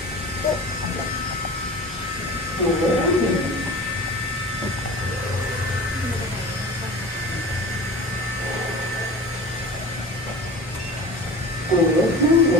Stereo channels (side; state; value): both; normal; correlation 0.37